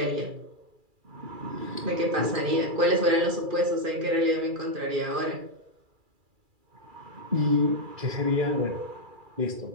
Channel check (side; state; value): left; late; 2.4 ms